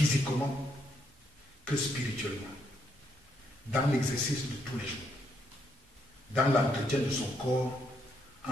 que spirituellement, dans l'exercice de tous les jours, dans l'entretien de son corps,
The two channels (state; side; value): normal; both; correlation 0.75